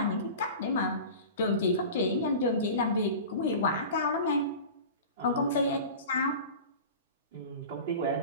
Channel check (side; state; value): both; inverted; correlation -0.35